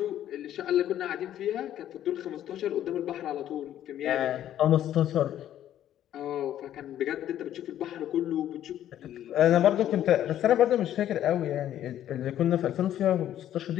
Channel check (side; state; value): right; quieter; 11.6 dB